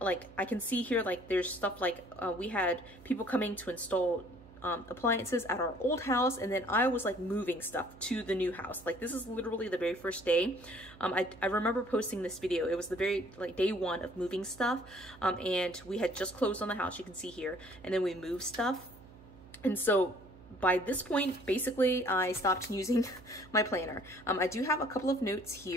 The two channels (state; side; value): noise; right; hum, 21 dB below the sound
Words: I can see here like there's stuff like we had people coming to install appliances at our old house, and then I was like moving stuff to the new house. Like this is literally the very first day. I remember posting this video. It was the very like day one of moving stuff, and we had just closed on the house, you can see here, and then we moved stuff. And so by this point, basically I stopped using my planner. I do have a couple of notes